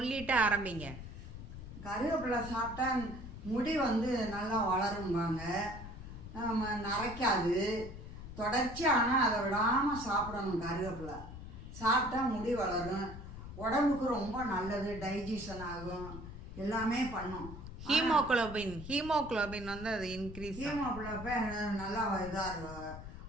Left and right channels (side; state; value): left; noise; rumble, 11 dB below the sound